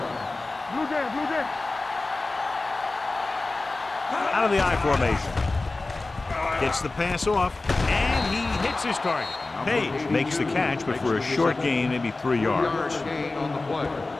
Blue down, blue down. Out of the I formation. Gets the pass off, and he hits his target. Page makes the catch, but for a short gain, maybe 3 yards. Yard gain on the play.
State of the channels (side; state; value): right; quieter; 3.3 dB